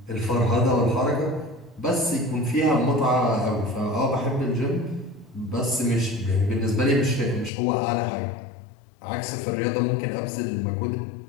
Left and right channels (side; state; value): right; drops out; at 7.5 s